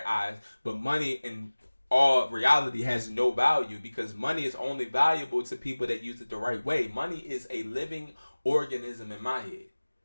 eyes, but money in all reality has no value, because money is only valuable to people that use it the right way. Money is a living organism in my head.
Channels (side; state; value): both; inverted; correlation -1.00